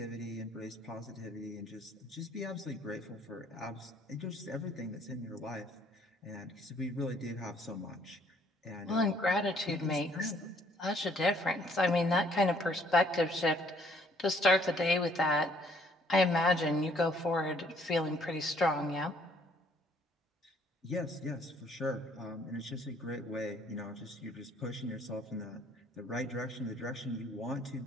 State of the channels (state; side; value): normal; both; correlation 0.62